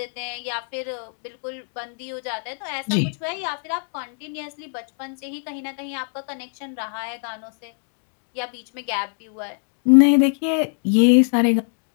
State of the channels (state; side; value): silent; right; 56 dB below the other